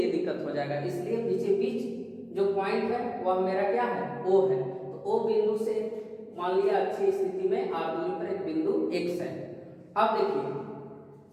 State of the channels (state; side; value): identical; both; correlation 1.00